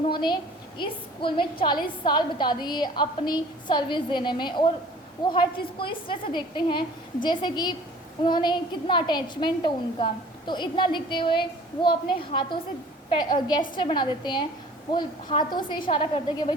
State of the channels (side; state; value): both; normal; correlation 0.48